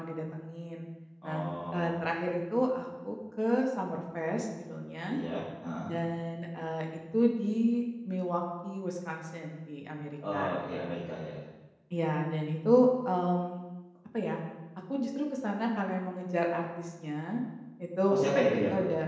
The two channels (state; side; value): identical; both; correlation 1.00